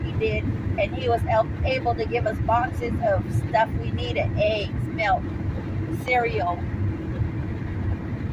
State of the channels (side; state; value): both; identical; correlation 1.00